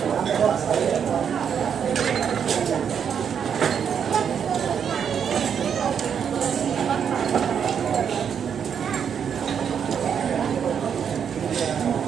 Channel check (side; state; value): left; quieter; 7.7 dB